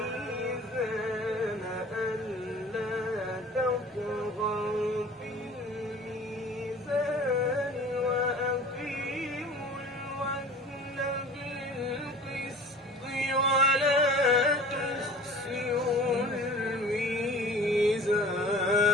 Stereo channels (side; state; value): both; normal; correlation 0.43